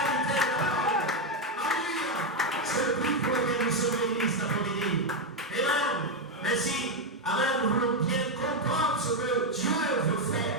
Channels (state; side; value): normal; both; correlation 0.04